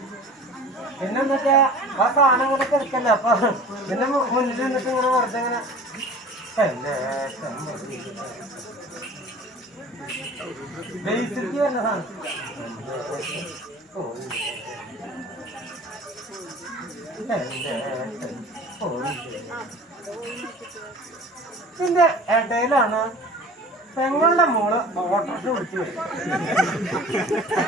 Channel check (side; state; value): both; normal; correlation 0.42